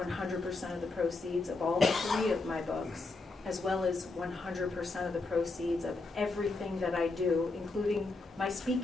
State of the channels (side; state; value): right; quieter; 3.5 dB